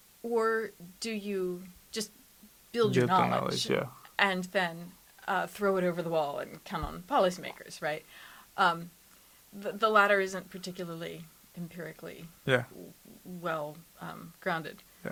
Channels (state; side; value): identical; both; correlation 1.00